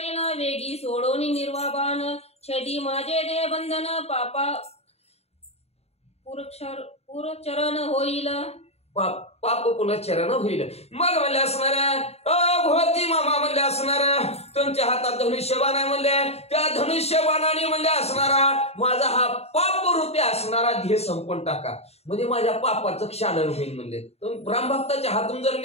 वेगी सोडोनी निर्वाबान, छेदी माझे दे बंधन, पापा पुरचरण होईल. पाप पुनश्चरण होईल. मग म्हणले असणाऱ्या भोवती मामा म्हणले असणाऱ्या तुमच्या हातात धनुष्यबाण आहे म्हणले, त्या धनुष्यबाणाने म्हणले असणारा माझा हा पाप रूपी असणारा ध्येय संपून टाका, म्हणजे माझ्या पापाचं क्षालन होईल म्हणले. रामभक्ताच्या हातून जर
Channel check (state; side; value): late; right; 0.30 ms